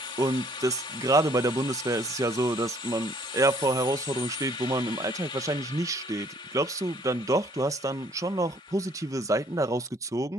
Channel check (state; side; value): normal; both; correlation 0.61